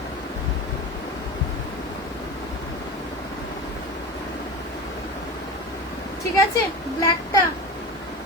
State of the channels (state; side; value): normal; both; correlation 0.29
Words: ঠিক আছে, ব্ল্যাকটা